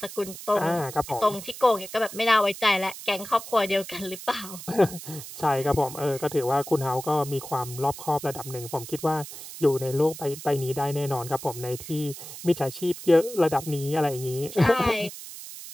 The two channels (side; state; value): right; noise; hiss, 12 dB below the sound